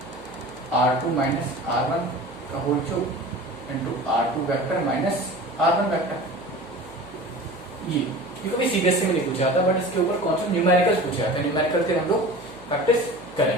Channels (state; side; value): noise; right; hum, 26 dB below the sound